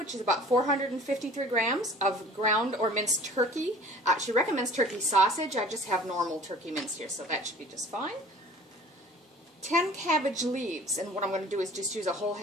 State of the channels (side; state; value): both; normal; correlation 0.46